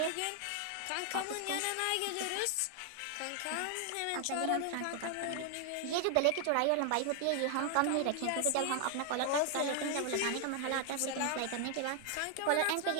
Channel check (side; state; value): both; different; correlation 0.00